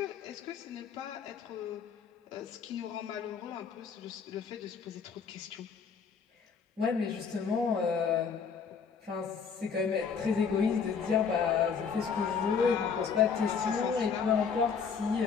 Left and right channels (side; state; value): right; quieter; 6.1 dB